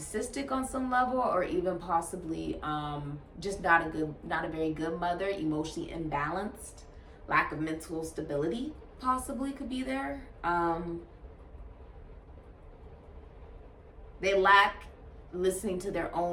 on some level, or even possibly just not a very good mother, emotionally imbalanced, lack of mental stability possibly could be there. They lack listening to their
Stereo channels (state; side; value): identical; both; correlation 1.00